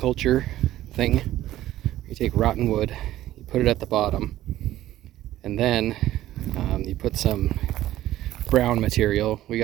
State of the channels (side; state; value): left; quieter; 14.2 dB